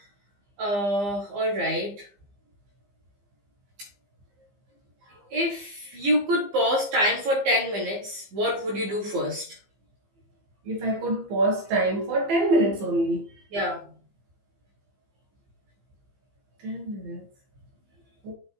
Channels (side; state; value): left; late; 15 ms